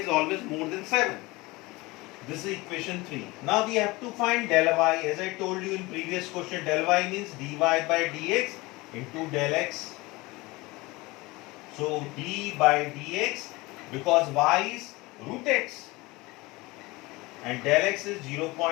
always more than 7. This is equation 3. Now we have to find del y. As I told you in previous question, del y means dy by dx into del x. So d by dx, because y is root x and del x is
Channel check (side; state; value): right; quieter; 22.3 dB